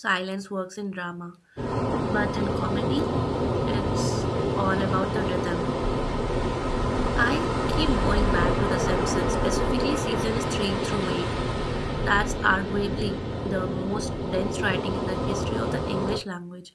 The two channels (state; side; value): identical; both; correlation 1.00